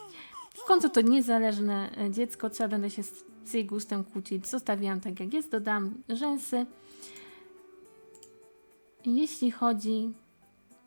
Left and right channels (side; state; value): both; inverted; correlation -1.00